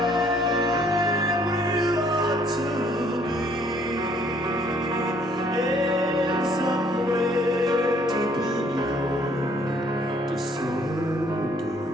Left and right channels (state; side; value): normal; both; correlation 0.62